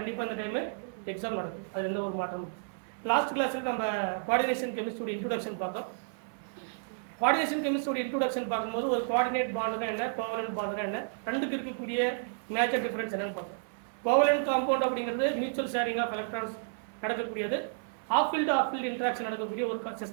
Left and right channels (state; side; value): silent; left; 57 dB below the other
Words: அந்த டைமு எக்ஸாம் நடக்கும், அது எந்த ஒரு மாற்றமும். லாஸ்ட் கிளாஸில் நம்ம கோஆர்டினேஷன் கெமிஸ்ட்ரியோட இன்ட்ரோடக்ஷன் பார்த்தோம். கோஆர்டினேஷன் கெமிஸ்ட்ரியோட இன்ட்ரோடக்ஷன் பார்க்கும்போது ஒரு கோஆர்டினேட் பாண்டுனா என்ன, கோவலன்ட் பாண்டுனா என்ன, ரெண்டுக்கு இருக்கக்கூடிய மேஜர் டிஃபரன்ஸ் என்னன்னு பார்த்தோம். கோவலன்ட் காம்பவுண்ட் அப்படிங்கிறது மியூச்சுவல் ஷேரிங் ஆஃப் எலக்ட்ரான்ஸ் நடக்கக்கூடியது, ஆஃப் ஃபீல்டு இன்ட்ராக்ஷன் நடக்கக்கூடிய ஒரு